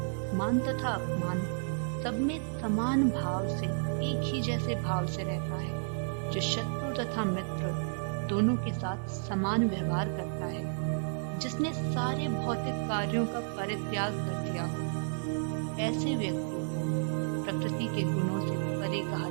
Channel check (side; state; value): left; silent; digital silence